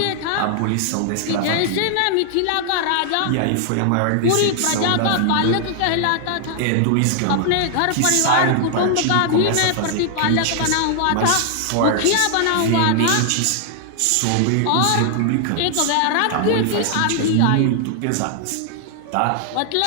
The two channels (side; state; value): both; different; correlation 0.00